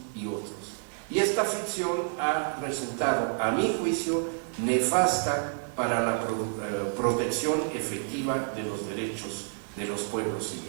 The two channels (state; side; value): silent; left; 58 dB below the other